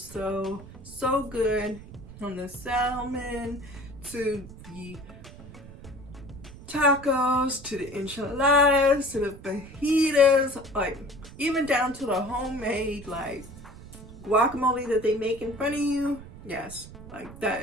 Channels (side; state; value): right; noise; rumble, 16 dB below the sound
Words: so good. From the salmon to the tacos to the enchiladas to the fajitas, like even down to the homemade like guacamole that they make in front of you. Yes, like that